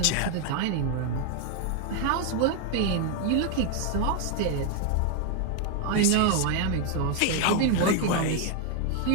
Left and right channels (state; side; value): different; both; correlation 0.01